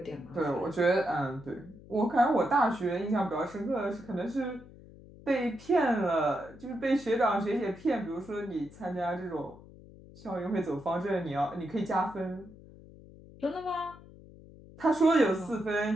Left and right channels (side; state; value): left; noise; hum, 20 dB below the sound